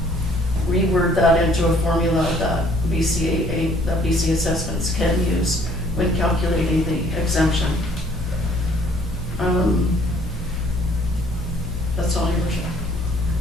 reword that into a formula that BC assessments can use when calculating the exemption. That's all, Your Worship.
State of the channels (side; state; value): both; normal; correlation 0.59